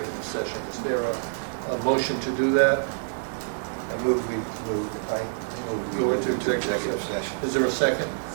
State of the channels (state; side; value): silent; left; digital silence